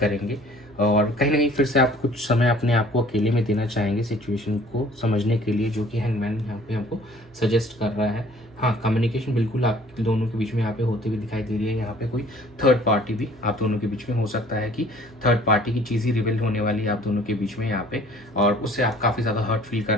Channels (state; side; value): normal; both; correlation 0.53